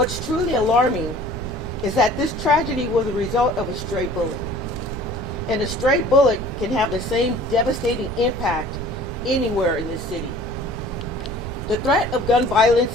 truly alarming is that this tragedy was a result of a stray bullet. And a stray bullet can have the same devastating impact anywhere in this city. The threat of gun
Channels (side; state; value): right; noise; rumble, 11 dB below the sound